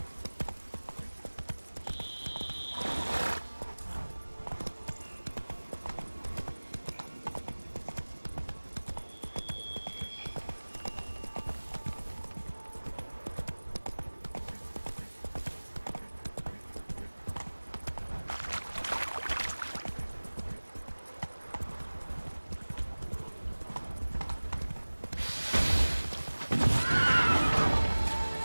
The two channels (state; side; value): inverted; both; correlation -1.00